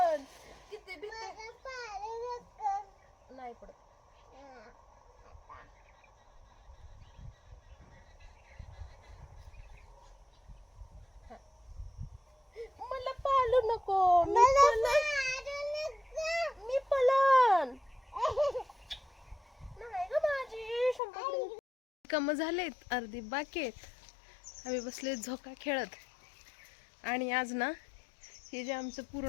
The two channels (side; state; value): right; drops out; at 21.0 s